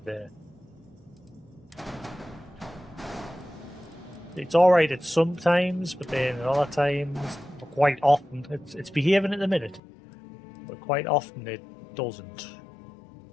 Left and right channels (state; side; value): drops out; right; at 9.8 s